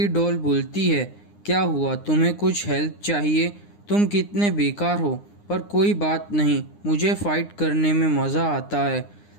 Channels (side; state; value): right; late; 9.8 ms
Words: डॉल बोलती है क्या हुआ, तुम्हें कुछ हेल्प चाहिए, तुम कितने बेकार हो, पर कोई बात नहीं, मुझे फ़ाइट करने में मज़ा आता है।